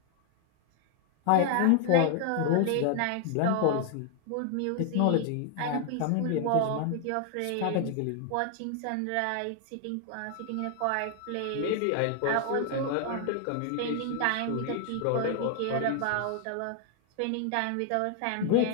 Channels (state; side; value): different; both; correlation 0.00